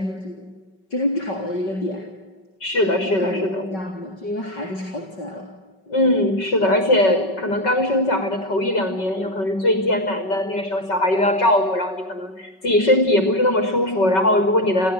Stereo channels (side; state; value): right; late; 5.3 ms